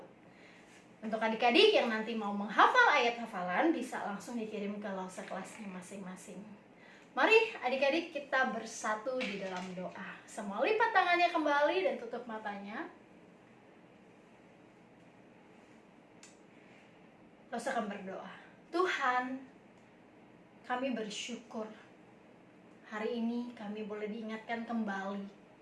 Untuk adik-adik yang nanti mau menghafal ayat hafalan, bisa langsung dikirim ke lause kelasnya masing-masing. Mari adik-adik kita bersatu di dalam doa. Semua lipat tangannya kembali dan tutup matanya. Lause akan berdoa. Tuhan, kami bersyukur hari ini kami boleh diingatkan kembali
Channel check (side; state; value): both; identical; correlation 1.00